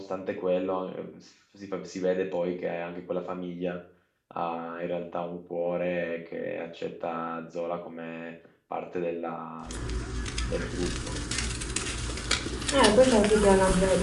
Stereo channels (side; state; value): both; identical; correlation 1.00